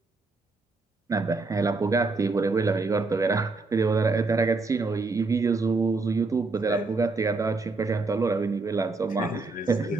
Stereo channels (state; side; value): quieter; left; 3.7 dB